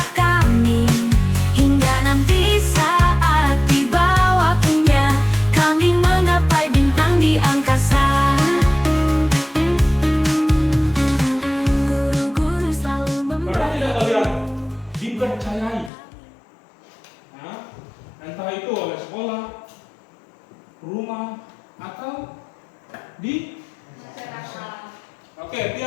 kami hingga nanti saat di bawah punya kami menggapai bintang di angkasa. Guru-guru selalu Pernah tidak kalian dipercayai? Nah, entah itu oleh sekolah, rumah, atau di masyarakat. Oke,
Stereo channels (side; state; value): right; drops out; at 15.9 s